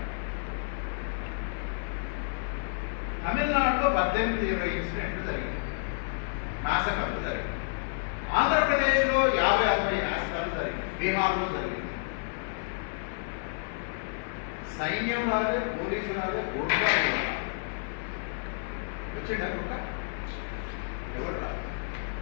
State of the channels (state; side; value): silent; right; 56 dB below the other